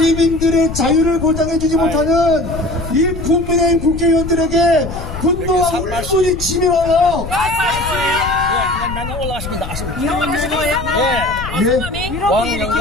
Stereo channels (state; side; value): noise; left; rumble, 9 dB below the sound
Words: 자유를 보장해주지 못하는 이 국민의힘 국회의원들에게 분노와 울분이 치밀어요. 그냥 맨날 올라가시면 나가시면